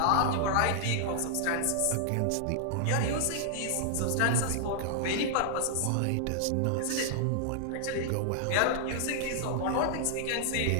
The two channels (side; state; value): both; different; correlation -0.01